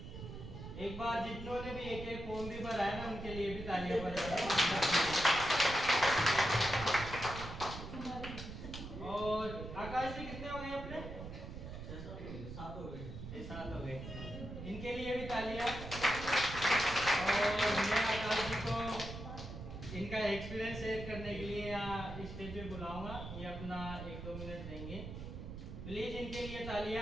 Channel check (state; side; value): noise; right; rumble, 9 dB below the sound